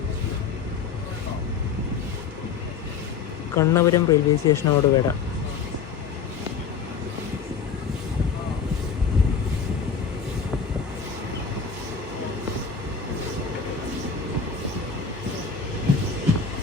കണ്ണപുരം റെയിൽവേ സ്റ്റേഷനോട് വരാം.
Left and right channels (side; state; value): right; quieter; 6.1 dB